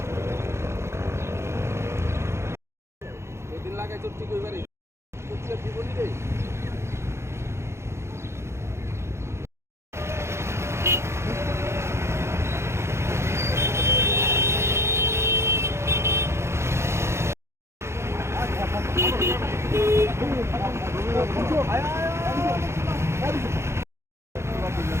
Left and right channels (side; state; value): left; late; 0.13 ms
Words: दिन लागे चुट्टी कोई बारी चुट्टी जीवन रे